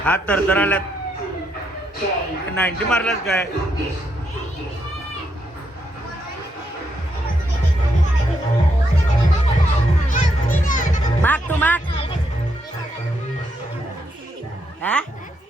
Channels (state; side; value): normal; both; correlation 0.78